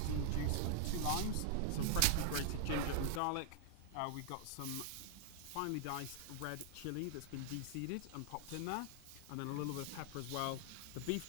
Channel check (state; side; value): different; both; correlation 0.00